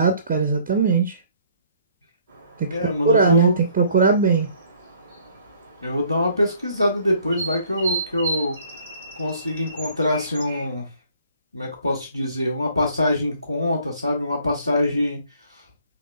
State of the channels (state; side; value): inverted; both; correlation -0.59